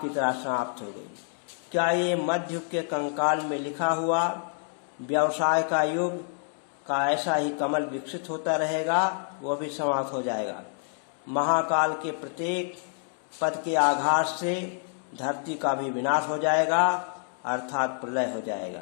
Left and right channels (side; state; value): right; silent; 60 dB below the other